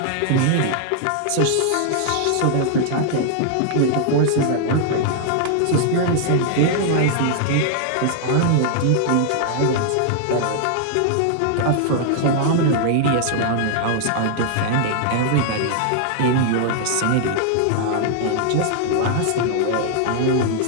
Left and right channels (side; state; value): both; different; correlation 0.00